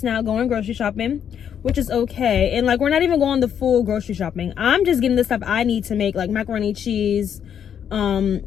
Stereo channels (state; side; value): quieter; right; 8.6 dB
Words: now going grocery shopping, which is okay. And like, we're not even going the full grocery shopping. I'm just getting the stuff I need to make, like macaroni, cheese,